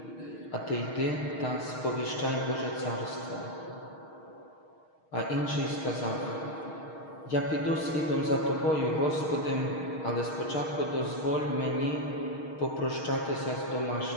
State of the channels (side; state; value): right; late; 6.4 ms